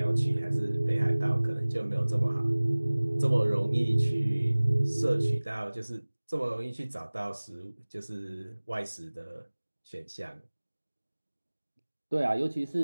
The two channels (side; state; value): both; inverted; correlation -1.00